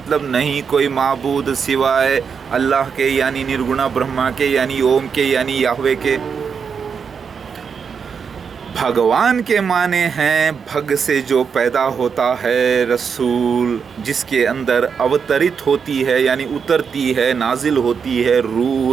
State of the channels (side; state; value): left; quieter; 6.3 dB